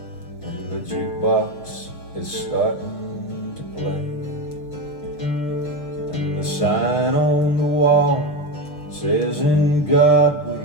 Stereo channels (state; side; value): late; right; 6.7 ms